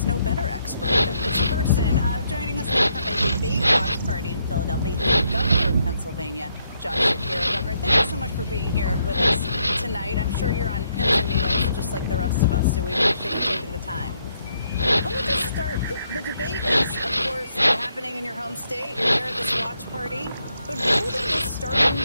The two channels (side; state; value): both; inverted; correlation -0.75